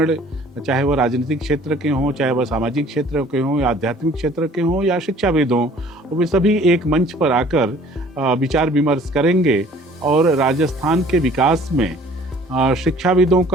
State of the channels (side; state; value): both; normal; correlation 0.53